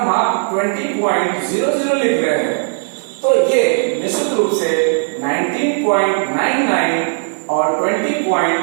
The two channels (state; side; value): silent; left; digital silence